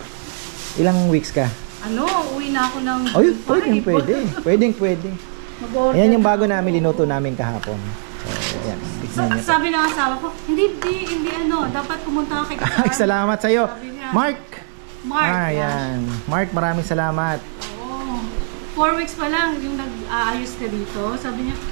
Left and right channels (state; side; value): silent; left; digital silence